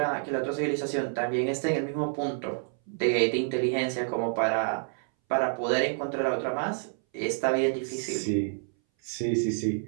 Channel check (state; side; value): silent; left; 59 dB below the other